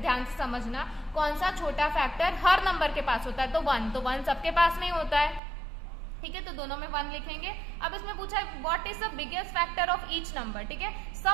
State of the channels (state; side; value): drops out; left; at 5.4 s